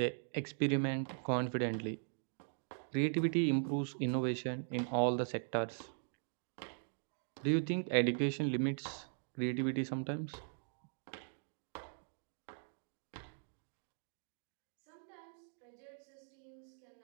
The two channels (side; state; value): left; silent; digital silence